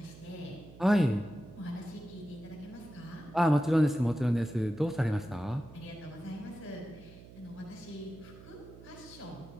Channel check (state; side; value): noise; right; hum, 18 dB below the sound